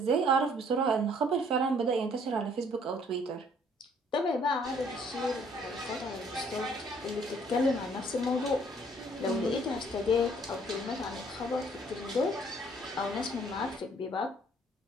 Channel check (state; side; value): normal; both; correlation 0.61